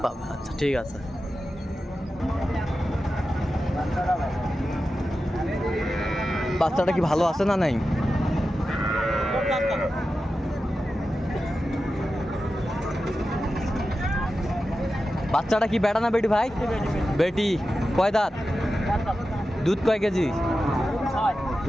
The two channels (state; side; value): normal; both; correlation 0.92